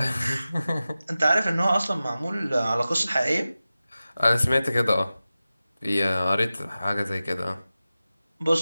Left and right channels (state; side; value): inverted; both; correlation -0.95